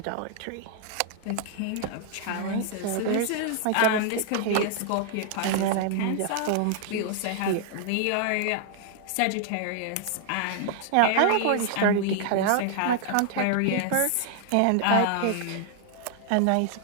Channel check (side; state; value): both; different; correlation 0.00